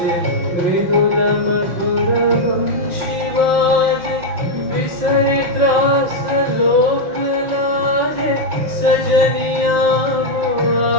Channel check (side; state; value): left; late; 5.5 ms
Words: मृदुल मधुर वंशी बाजे विसरि त्रास लोक लाजे सजनिया